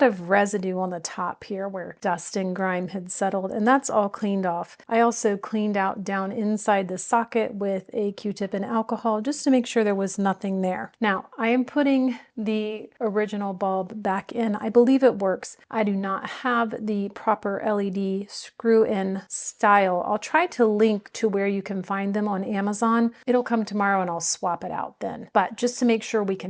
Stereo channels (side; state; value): both; identical; correlation 1.00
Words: of residue on the top here where dust and grime had settled, and that's all cleaned off. I also cleaned out down inside the socket with a Q-tip and alcohol just to make sure there was nothing there. Now, I am putting the original bulb back in. I believe it works. I do not have the proper LED screw-in style. I'll try to link to where you can find them on Amazon. It'll come tomorrow and I'll swap it out then. But just to make sure we